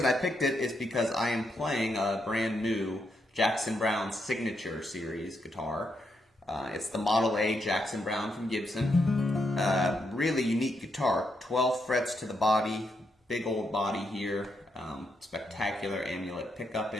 I picked it is because I am playing a brand new Jackson Browne Signature Series guitar. It's the Model A Jackson Browne from Gibson. Really unique guitar, 12 frets to the body, big old body here, spectacular amulet pickup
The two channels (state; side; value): normal; both; correlation 0.80